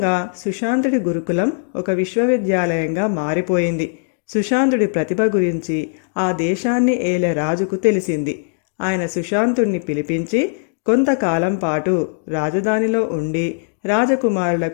సుశాంతుడి గురుకులం ఒక విశ్వవిద్యాలయంగా మారిపోయింది. సుశాంతుడి ప్రతిభ గురించి ఆ దేశాన్ని ఏలే రాజుకు తెలిసింది. ఆయన సుశాంతుడిని పిలిపించి కొంతకాలం పాటు రాజధానిలో ఉండి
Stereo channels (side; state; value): right; silent; digital silence